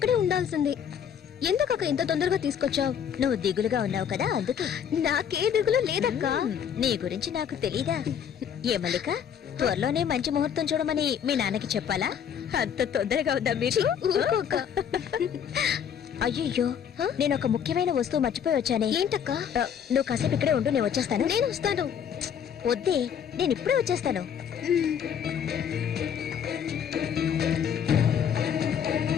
ఉండాల్సింది. ఎందుకక్క ఇంత తొందరగా తీసుకొచ్చావు? నువ్వు దిగులుగా ఉన్నావు కదా అందుకే. నాకే దిగులు లేదక్క. నీ గురించి నాకు తెలీదా? ఏ మల్లిక, త్వరలోనే మంచి ముహూర్తం చూడమని మీ నాన్నకి చెప్పాలా? అంత తొందరగా ఉందా మీరు? ఊరుకోక. అయ్యో, నేను ఒక ముఖ్యమైన వస్తువు మర్చిపోయి వచ్చానే. ఏంటక్క? నువ్వు కాసేపు ఇక్కడే ఉండు, నేను వచ్చేస్తాను. నేను వస్తాను. వద్దే, నేను ఇప్పుడే వచ్చేస్తాను.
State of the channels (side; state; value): right; quieter; 8.3 dB